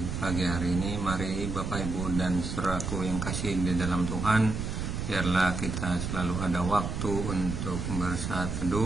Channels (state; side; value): noise; right; rumble, 4 dB below the sound